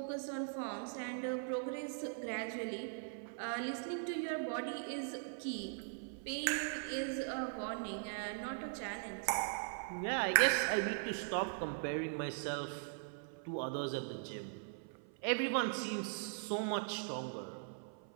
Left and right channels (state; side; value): silent; left; 51 dB below the other